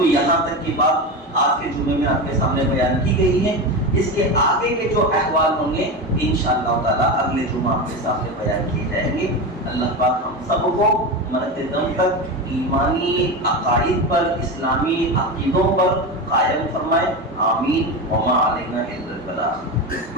یہاں تک کی بات آج کے جمعے میں آپ کے سامنے بیان کی گئی ہے۔ اس کے آگے کے جو احوال ہوں گے انشاءاللہ تعالیٰ اگلے جمعہ آپ کے سامنے بیان کیے جائیں گے۔ اللہ پاک ہم سب کو مرتے دم تک ایمانی عقائد پر، اسلامی عقیدوں پر قائم فرمائے، آمین۔ وما علینا الا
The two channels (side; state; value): both; normal; correlation 0.20